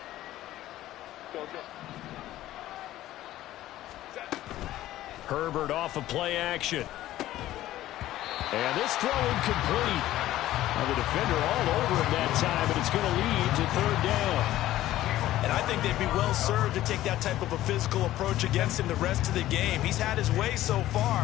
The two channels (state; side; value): quieter; right; 14.5 dB